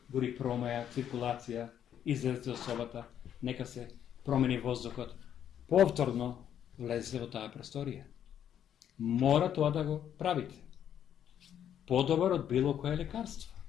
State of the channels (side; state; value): right; quieter; 9.7 dB